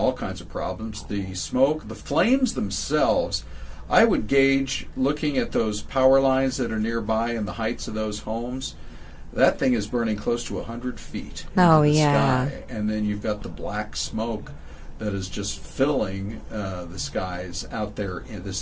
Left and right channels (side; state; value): both; identical; correlation 1.00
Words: kinds of problems. The smoke, the flames themselves, I would gauge, looking at those power lines that are nearby and the heights of those homes, that thing is burning close to 100 feet into the sky. And then you've got the black smoke that is just filling the skies out there. And this